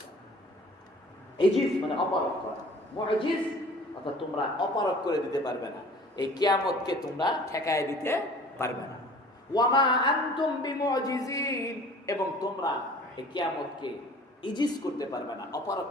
না। ইজিজ মানে অপারগ করা, মুজিজ অর্থাৎ তোমরা অপারগ করে দিতে পারবে না, এই কিয়ামতকে তোমরা ঠেকায় দিতে পারবে না। ওয়া মা আনতুম বিমুজিজিন, এবং তোমরা এই কিয়ামতকে ইজিজ করতে পারবে না, অপারগ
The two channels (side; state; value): both; normal; correlation 0.48